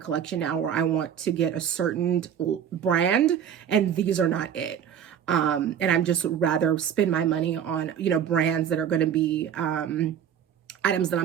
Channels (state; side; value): quieter; left; 9.0 dB